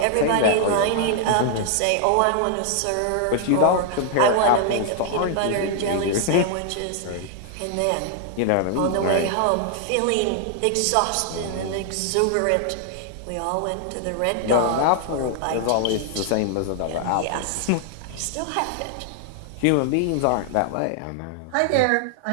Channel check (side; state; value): both; different; correlation 0.00